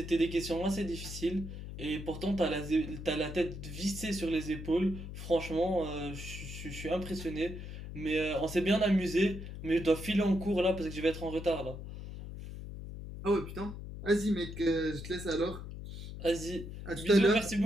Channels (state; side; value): noise; left; hum, 9 dB below the sound